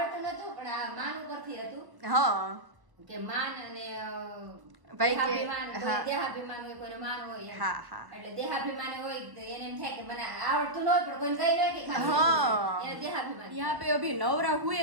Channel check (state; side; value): late; left; 1.0 ms